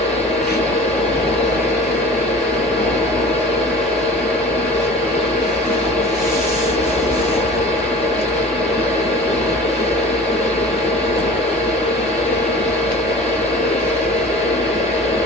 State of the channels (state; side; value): normal; both; correlation 0.41